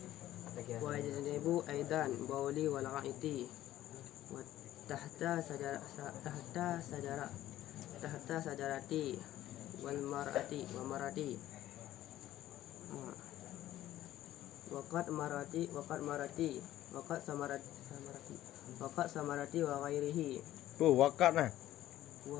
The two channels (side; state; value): right; quieter; 13.8 dB